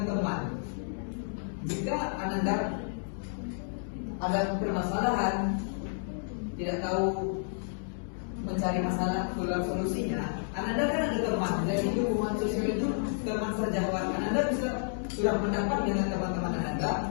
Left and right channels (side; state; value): right; silent; digital silence